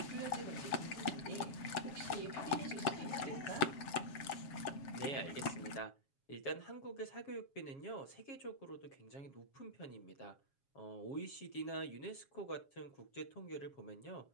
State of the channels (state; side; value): late; right; 7.3 ms